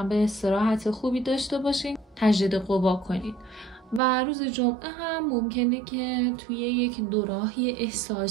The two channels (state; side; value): drops out; left; at 4.0 s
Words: استراحت خوبی داشته باشین، تجدید قوا کنید. و روز جمعه هم ممکنه که توی یک دوراهی